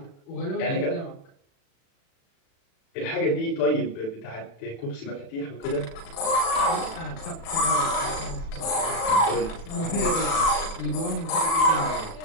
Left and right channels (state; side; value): late; right; 36 ms